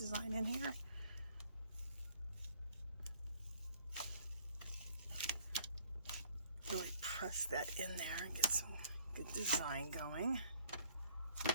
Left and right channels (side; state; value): both; inverted; correlation -0.59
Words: in here. Really press that in there and get some good design going.